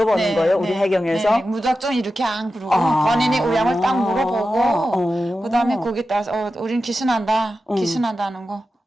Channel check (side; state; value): both; normal; correlation 0.92